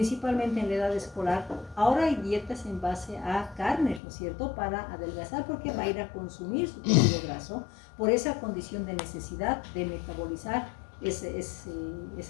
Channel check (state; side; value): drops out; right; at 4.0 s